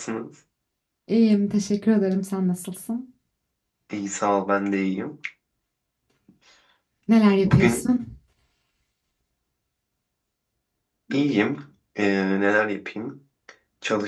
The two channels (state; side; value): identical; both; correlation 1.00